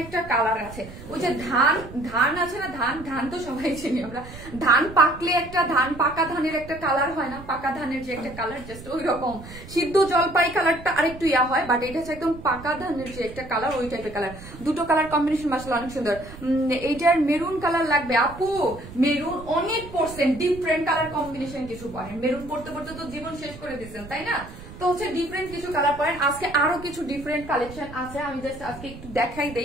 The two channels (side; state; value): right; noise; rumble, 15 dB below the sound